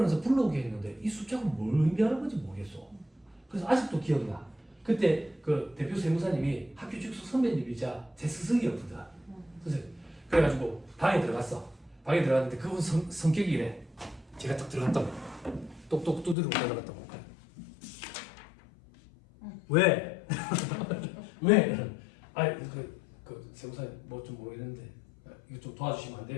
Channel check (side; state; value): right; drops out; at 16.4 s